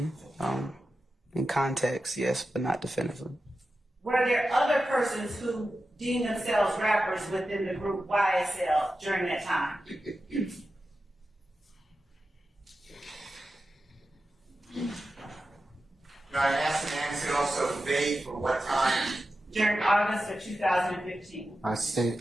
In context, yes, but not definitively. Were there other persons who deemed themselves rappers within the group YSL during that time? Now, I asked and answered also vague for what time. During August of 2015. I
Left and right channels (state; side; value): normal; both; correlation 0.92